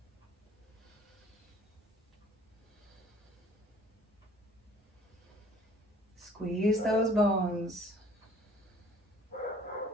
Squeeze those bones.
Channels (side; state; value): both; normal; correlation 0.54